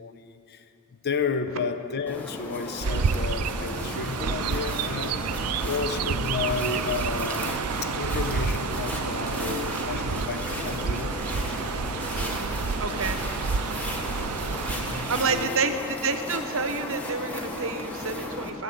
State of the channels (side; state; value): both; normal; correlation 0.19